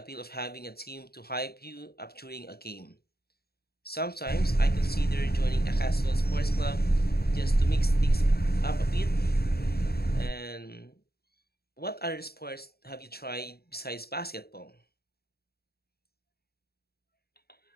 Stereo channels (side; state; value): right; late; 0.46 ms